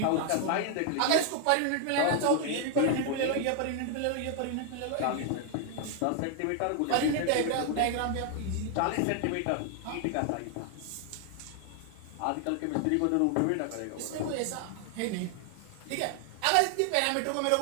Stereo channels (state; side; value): different; both; correlation 0.00